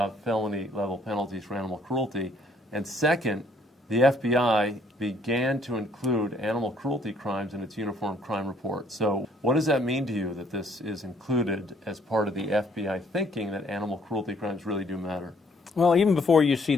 felony-level penalties for animal cruelty. And second, the FBI began to include animal cruelty crimes in its Uniform Crime Report. So what does that mean to you that this is included as part of the FBI thinking that animal cruelty crimes really do matter? Well, even before you see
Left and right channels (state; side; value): normal; both; correlation 0.64